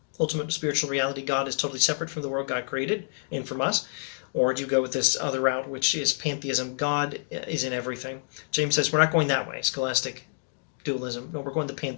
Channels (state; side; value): silent; right; digital silence